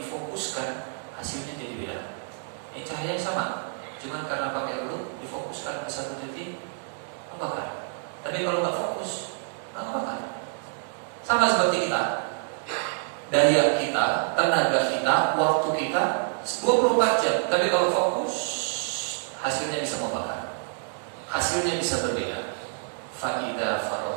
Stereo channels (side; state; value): left; silent; 60 dB below the other